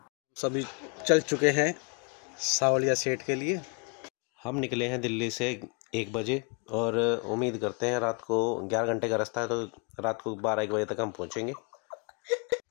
सभी चल चुके हैं सावलिया सेठ के लिए। हम निकले हैं दिल्ली से 1 बजे और उम्मीद करते हैं रात को 11 घंटे का रास्ता है, तो रात को 12-1 बजे तक हम पहुंचेंगे।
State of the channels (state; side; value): quieter; right; 34.1 dB